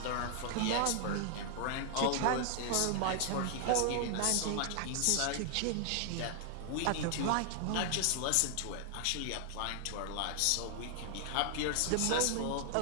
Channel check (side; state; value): both; different; correlation 0.00